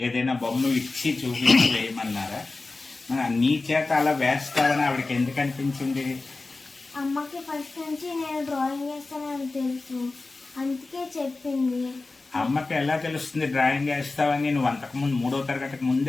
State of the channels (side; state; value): right; quieter; 3.5 dB